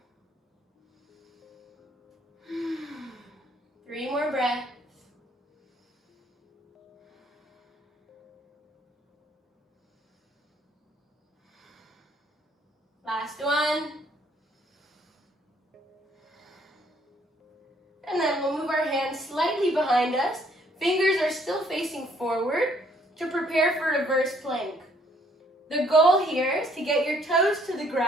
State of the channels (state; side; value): normal; both; correlation 0.65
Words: 3 more breaths. Last one. And then we'll move our hands slightly behind us. Fingers are still facing forward to prepare for reverse plank. The goal here is to get your toes to the